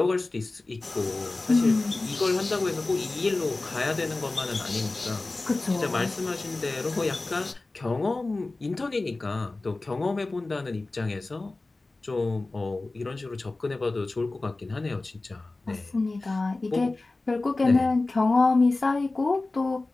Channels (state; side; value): quieter; right; 3.2 dB